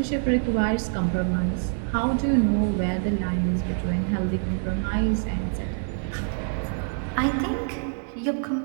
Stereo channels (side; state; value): left; silent; digital silence